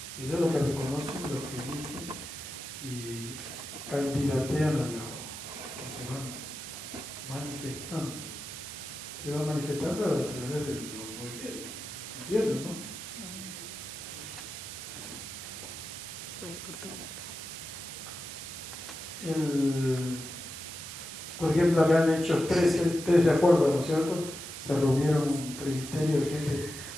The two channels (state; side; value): noise; right; hiss, 9 dB below the sound